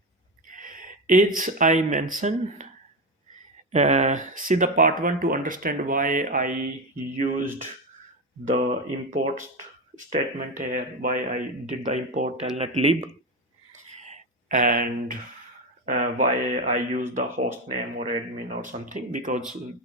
As I mentioned, see the part 1 to understand why I used the import statement here, why I did the import telnet lib, and why I use the host name or admin or something, because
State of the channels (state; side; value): normal; both; correlation 0.15